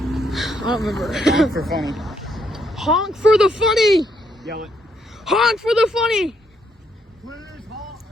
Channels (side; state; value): both; normal; correlation 0.74